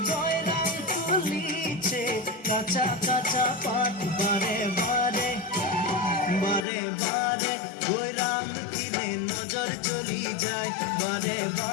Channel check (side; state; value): right; drops out; at 6.7 s